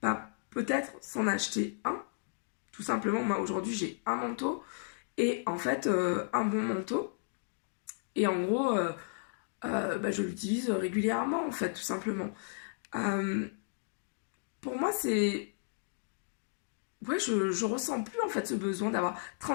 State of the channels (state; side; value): silent; right; digital silence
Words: peut-être s'en acheter un. Tout simplement, moi aujourd'hui, j'ai un manteau et en fait, un bon manteau. Et en gros, je l'utilise régulièrement, en fait, tout simplement. Euh, pour moi, c'est ouais, je ressens plus en fait ce besoin d'avoir